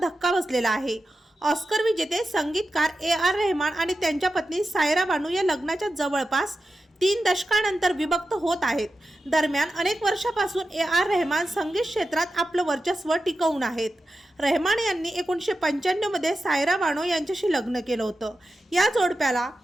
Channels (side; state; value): both; normal; correlation 0.91